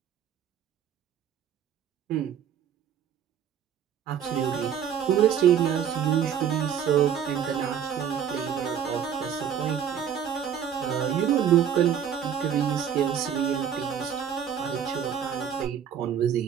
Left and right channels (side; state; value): left; quieter; 8.6 dB